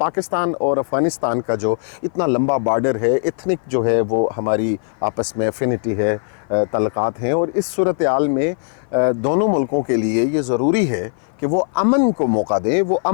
और अफ़गानिस्तान का जो इतना लंबा बॉर्डर है, इथनिक जो है वो हमारी आपस में एफिनिटी है, ताल्लुकात हैं, और इस सूरत हाल में दोनों मुल्कों के लिए ये ज़रूरी है कि वो अमन को मौका दें, वो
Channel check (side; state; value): right; silent; 57 dB below the other